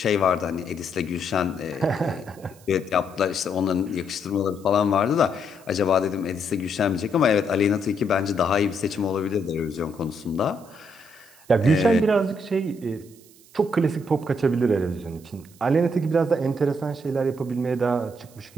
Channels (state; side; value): noise; right; hiss, 26 dB below the sound